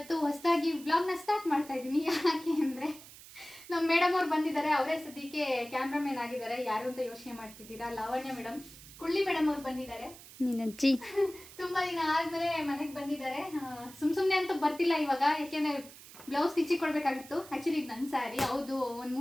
ಹೊಸದಾಗಿ ವ್ಲಾಗ್ನ ಸ್ಟಾರ್ಟ್ ಮಾಡ್ತಾ ಇದ್ದೀನಿ. ಯಾಕೆ ಅಂದರೆ ನಮ್ಮ ಮೇಡಮ್ ಅವ್ರು ಬಂದಿದ್ದಾರೆ. ಅವರೇ ಸದ್ಯಕ್ಕೆ ಕ್ಯಾಮ್ರಾಮನ್ ಆಗಿದ್ದಾರೆ. ಯಾರು ಅಂತ ಯೋಚನೆ ಮಾಡ್ತಿದ್ದೀರಾ? ಲಾವಣ್ಯ ಮೇಡಮ್, ಕುಳ್ಳಿ ಮೇಡಮ್ ಅವ್ರು ಬಂದಿದ್ದಾರೆ. ನೀನಜ್ಜಿ ತುಂಬ ದಿನ ಆದಮೇಲೆ ಮನೆಗೆ ಬಂದಿದ್ದಾರೆ. ಸುಮ್ಮನೆ ಅಂತೂ ಬರ್ತಿಲ್ಲ ಇವಾಗ, ಯಾಕೆಂದರೆ ಬ್ಲೌಸ್ ಸ್ಟಿಚಿಗೆ ಕೊಡಬೇಕಾಗಿತ್ತು. ಆ್ಯಕ್ಚುಲಿ ಇದು ನನ್ನ ಸ್ಯಾರಿ. ಹೌದು, ಒಂದು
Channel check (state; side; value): noise; right; hiss, 18 dB below the sound